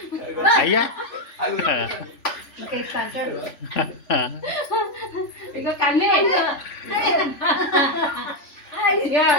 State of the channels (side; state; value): right; late; 3.5 ms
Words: అయ్యా ఇక కన్నే